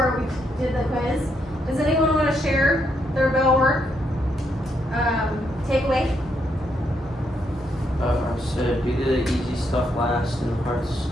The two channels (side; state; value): both; normal; correlation 0.77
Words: we did the quiz. Does anyone want to share their bell work takeaway? So do the easy stuff last and the hard